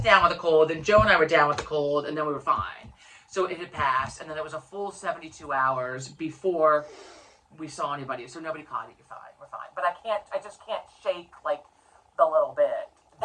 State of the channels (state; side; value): identical; both; correlation 1.00